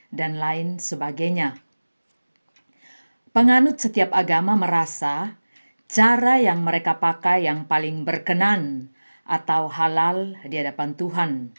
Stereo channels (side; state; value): both; inverted; correlation -1.00